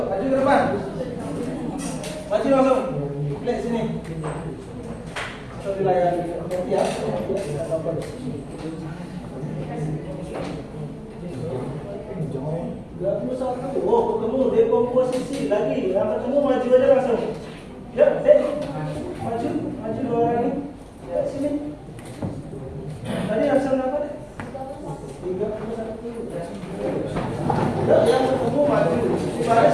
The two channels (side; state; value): both; identical; correlation 1.00